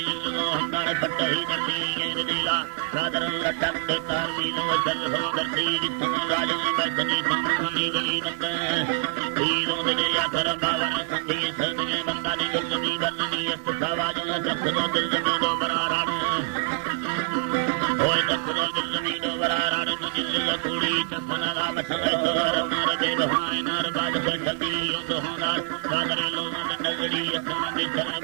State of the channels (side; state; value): left; silent; digital silence